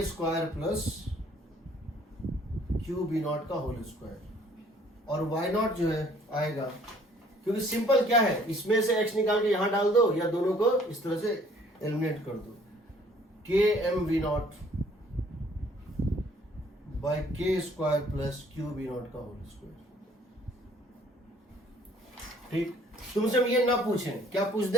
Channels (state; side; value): normal; both; correlation 0.59